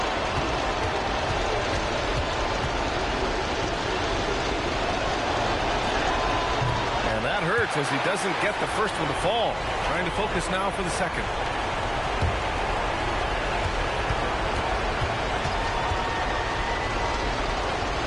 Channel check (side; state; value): both; identical; correlation 1.00